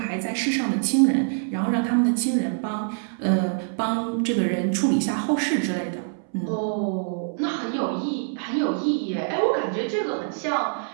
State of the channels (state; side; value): silent; left; 62 dB below the other